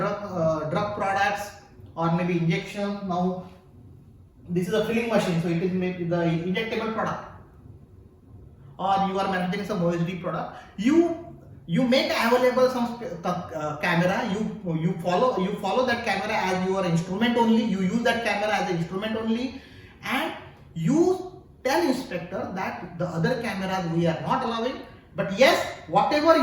products or maybe injection, now this is a filling machine, so it is maybe the injectable product, or you are manufacturing some OSD product, you make available some camera, you follow that camera as your instrument only, you use that camera as an instrument only, and you tell inspector that the other cameras we are not allowing, but yes, whatever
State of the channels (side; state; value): both; identical; correlation 1.00